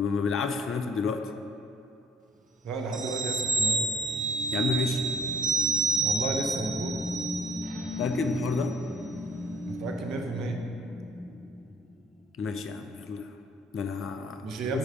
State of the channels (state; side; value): normal; both; correlation 0.57